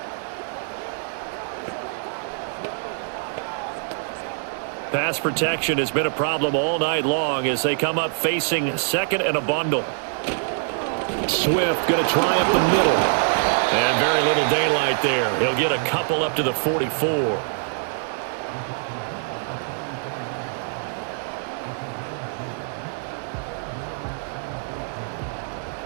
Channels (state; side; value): silent; left; digital silence